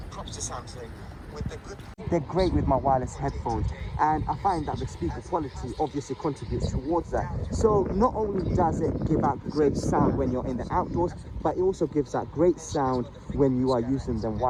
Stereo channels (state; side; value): identical; both; correlation 1.00